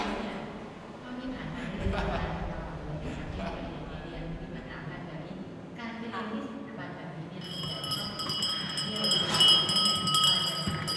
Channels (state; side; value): identical; both; correlation 1.00